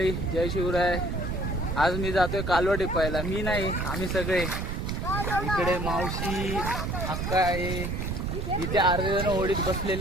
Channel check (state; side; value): noise; right; rumble, 2 dB below the sound